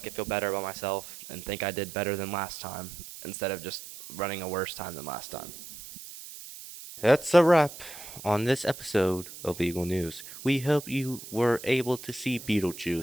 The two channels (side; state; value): right; noise; hiss, 13 dB below the sound